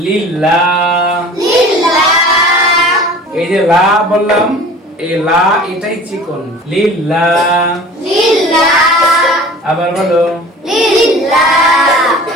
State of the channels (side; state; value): both; normal; correlation 0.43